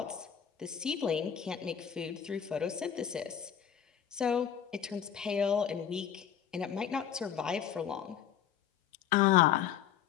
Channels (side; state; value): right; quieter; 9.0 dB